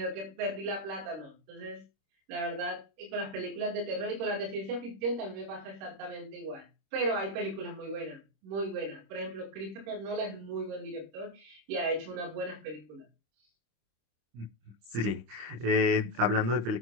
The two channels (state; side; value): late; left; 26 ms